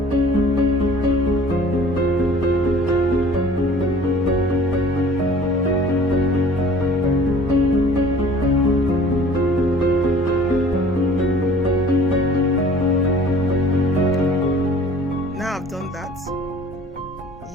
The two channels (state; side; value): normal; both; correlation 0.50